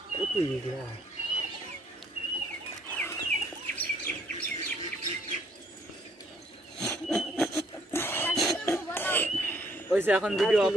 এখন ভিডিও অফ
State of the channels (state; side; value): normal; both; correlation 0.65